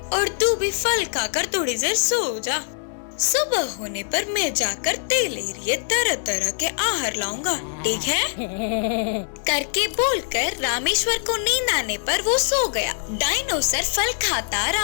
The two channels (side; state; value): right; silent; 63 dB below the other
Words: और तू भी फल खाकर थोड़ी देर सो जा। सुबह होने पर मैं जाकर तेरे लिए तरह तरह के आहार लाऊंगा, ठीक है? करके बोलकर रामेश्वर को नींद आने पर वो सो गया। डायनोसर फल खाता